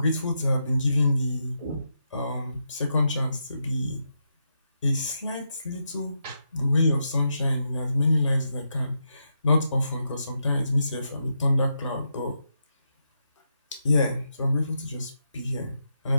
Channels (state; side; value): inverted; both; correlation -0.84